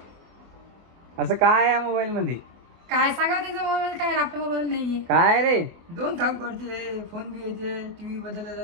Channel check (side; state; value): left; late; 24 ms